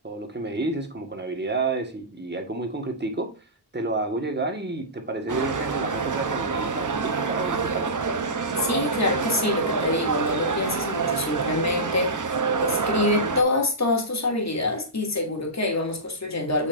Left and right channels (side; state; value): both; normal; correlation -0.17